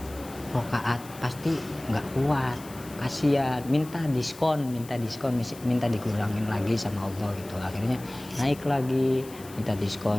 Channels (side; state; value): left; noise; hiss, 19 dB below the sound